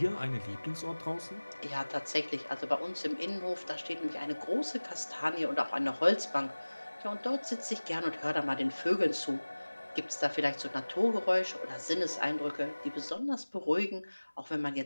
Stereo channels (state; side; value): inverted; both; correlation -1.00